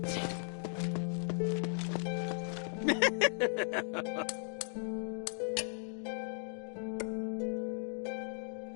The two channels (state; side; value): silent; right; 53 dB below the other